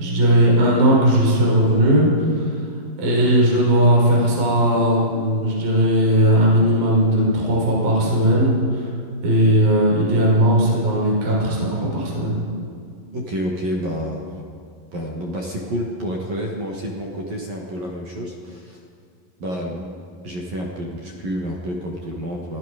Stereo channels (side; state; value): left; late; 11 ms